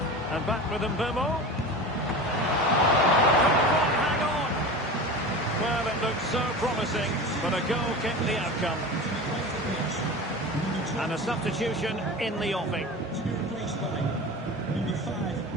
And back with Mbeumo. Hang on. Well, it looked so promising, but a goal kept the outcome. And a substitution in the offing. To be replaced by number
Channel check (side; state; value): both; normal; correlation 0.31